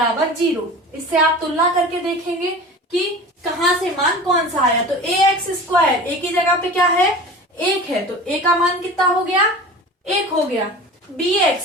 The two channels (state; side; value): normal; both; correlation 0.36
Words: 0। इससे आप तुलना करके देखेंगे कि कहाँ से मान कौन सा आया। तो ए एक्स स्क्वायर, ए की जगह पे क्या है? 1 है, तो ए का मान कितना हो गया? 1 हो गया। बी